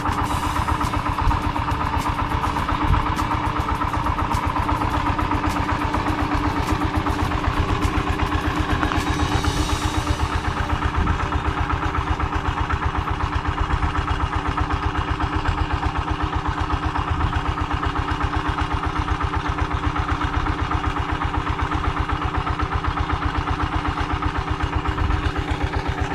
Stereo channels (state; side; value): identical; both; correlation 1.00